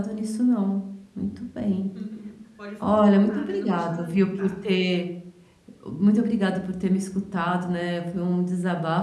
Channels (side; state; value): both; identical; correlation 1.00